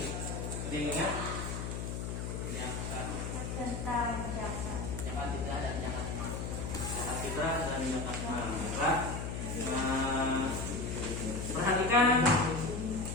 Ada yang ingat? Tentang zakat. Zakat fitrah dan zakat mal. Zakat fitrah dan zakat mal. Perhatikan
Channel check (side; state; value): left; noise; hum, 4 dB below the sound